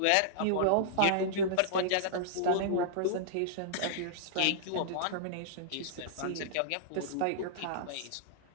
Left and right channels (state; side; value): different; both; correlation -0.02